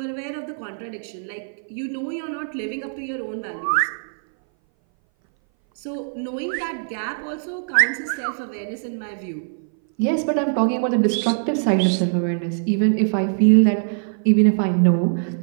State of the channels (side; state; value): left; silent; 60 dB below the other